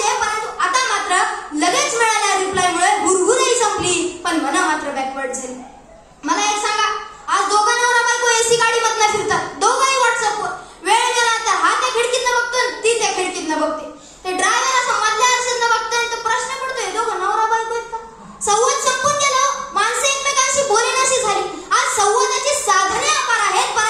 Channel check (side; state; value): both; identical; correlation 1.00